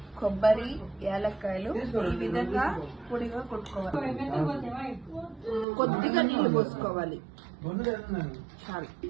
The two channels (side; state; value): left; drops out; at 5.7 s